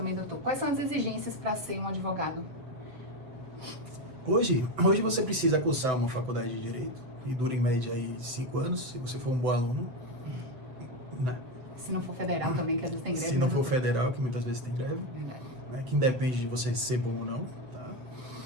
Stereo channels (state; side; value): late; left; 7.9 ms